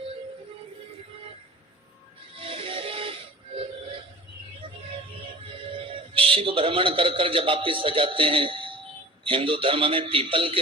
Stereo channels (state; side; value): normal; both; correlation 0.39